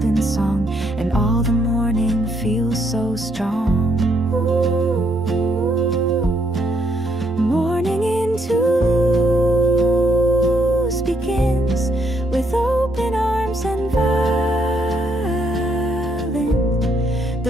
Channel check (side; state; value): both; normal; correlation 0.73